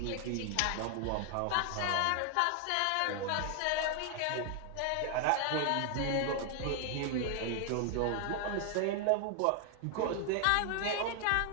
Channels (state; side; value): different; both; correlation 0.00